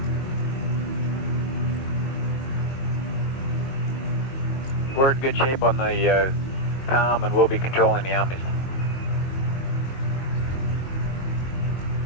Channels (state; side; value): late; right; 22 ms